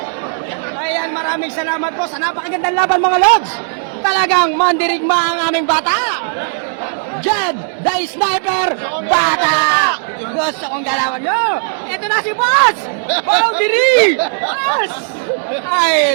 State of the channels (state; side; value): silent; left; 69 dB below the other